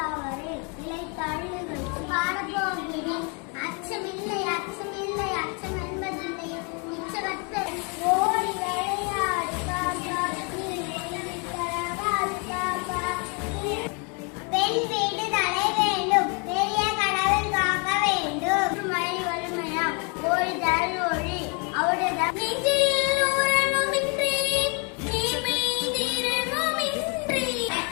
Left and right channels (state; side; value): quieter; right; 34.7 dB